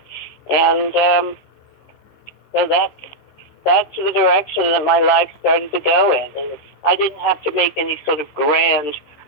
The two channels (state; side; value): late; right; 15 ms